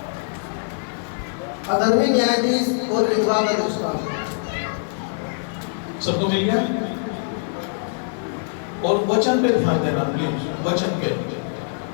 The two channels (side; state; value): right; silent; digital silence